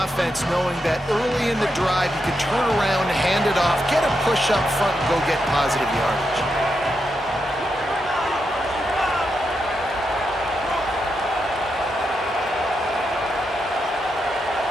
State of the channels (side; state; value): both; normal; correlation 0.85